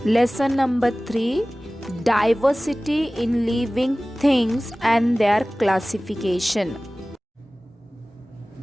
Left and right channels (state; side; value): normal; both; correlation 0.98